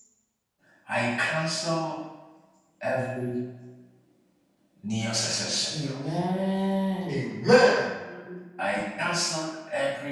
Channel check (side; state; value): both; identical; correlation 1.00